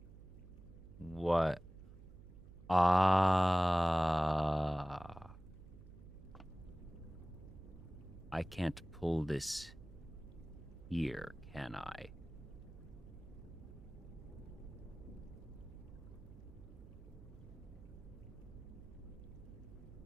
What? Ah. I can't pull this here, can I?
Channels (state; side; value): noise; right; hum, 17 dB below the sound